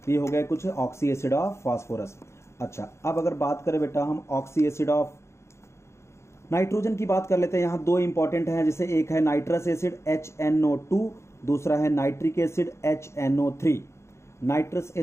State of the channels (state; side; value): late; right; 0.13 ms